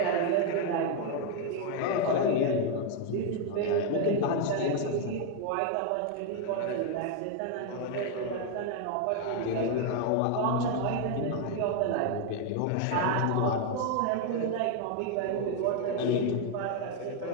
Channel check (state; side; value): different; both; correlation 0.00